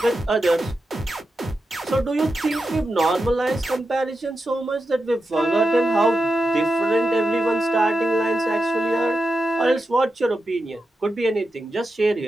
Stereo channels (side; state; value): both; normal; correlation 0.89